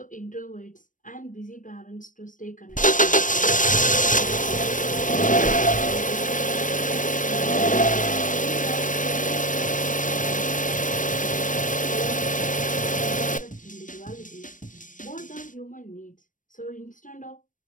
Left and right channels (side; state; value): right; late; 0.38 ms